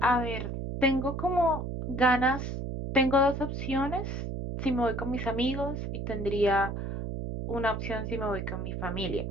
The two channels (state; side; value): noise; right; hum, 4 dB below the sound